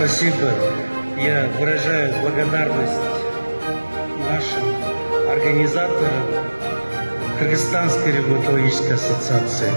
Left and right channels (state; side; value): inverted; both; correlation -1.00